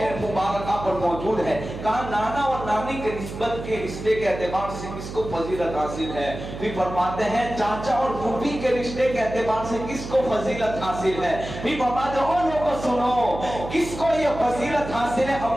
مبارکہ پر موجود ہے. کہا نانا اور نانی کے نسبت کے رشتے کے اعتبار سے کس کو فضیلت حاصل ہے. پھر فرماتے ہیں چاچا اور پھوپھی کے رشتے کے اعتبار سے کس کو فضیلت حاصل ہے. پھر فرماتے ہیں لوگوں سنو کس کو یہ فضیلت حاصل ہے،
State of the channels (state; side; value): noise; right; hum, 9 dB below the sound